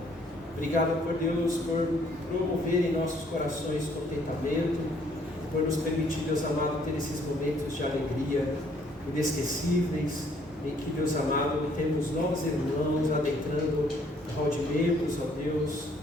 Obrigado por Deus, por promover em nossos corações contentamento, por nos permitir, Deus amado, ter esses momentos de alegria inesquecíveis, em que, Deus amado, temos novos irmãos adentrando o hall de membros, ó Deus.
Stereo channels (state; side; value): normal; both; correlation 0.64